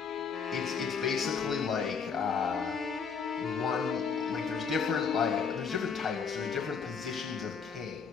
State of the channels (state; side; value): quieter; right; 5.9 dB